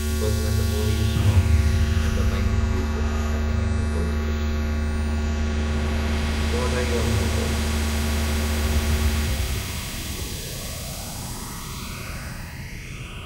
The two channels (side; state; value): both; identical; correlation 1.00